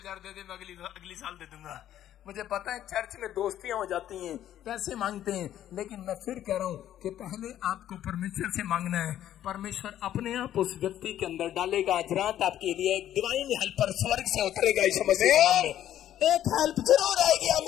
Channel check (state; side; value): quieter; right; 11.7 dB